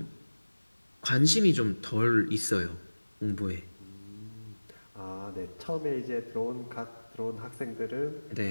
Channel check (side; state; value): both; inverted; correlation -1.00